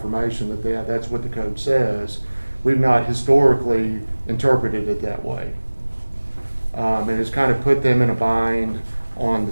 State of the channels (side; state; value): both; inverted; correlation -1.00